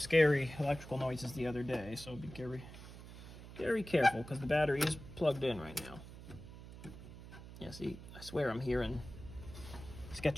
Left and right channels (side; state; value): right; noise; hum, 14 dB below the sound